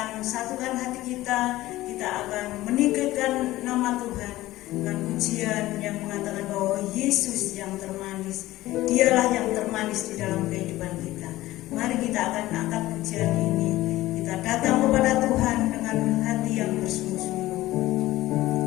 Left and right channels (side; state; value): right; quieter; 16.7 dB